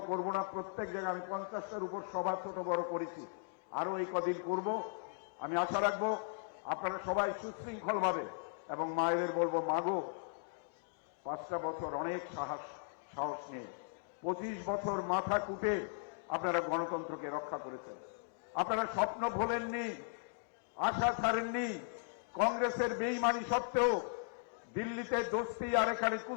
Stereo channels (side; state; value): right; silent; digital silence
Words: করব না। প্রত্যেক জায়গায় আমি 50টার উপর সভা ছোট বড় করেছি, আরো এই কদিন করব। আমি আশা রাখবো আপনারা সবাই সুশৃঙ্খলভাবে, এবং মায়েদের বলবো, মাগো 5টা বছর অনেক সাহস নিয়ে 25 বছর মাথা কুটে আপনারা গণতন্ত্রকে রক্ষা করেছেন। আপনারা স্বপ্ন ভোলেননি, আশা ছাড়েননি। কংগ্রেসের বেইমানি সত্ত্বেও দিল্লিতে দোস্তি আর এখানে